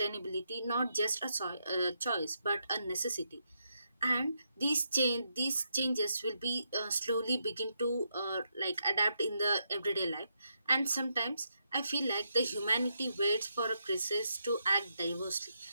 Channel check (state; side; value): inverted; both; correlation -0.81